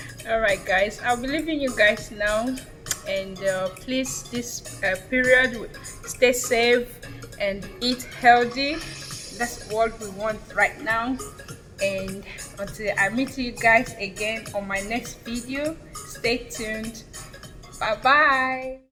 Alright guys, I'll be leaving you guys now, and please, this period, stay safe and eat healthy. That's what we want right now. And until I meet you guys again on my next video, stay tuned. Bye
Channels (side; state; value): both; identical; correlation 1.00